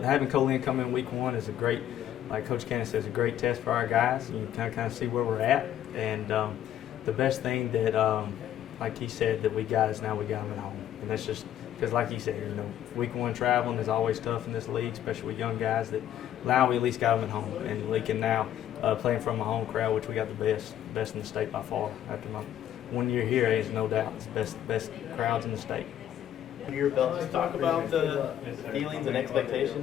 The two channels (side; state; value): right; quieter; 11.1 dB